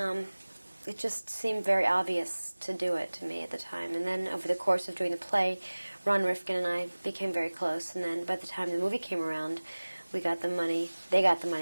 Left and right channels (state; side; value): inverted; both; correlation -1.00